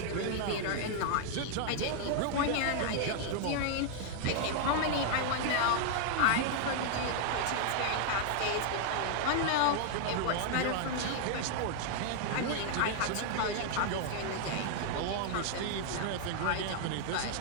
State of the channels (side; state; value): both; different; correlation 0.00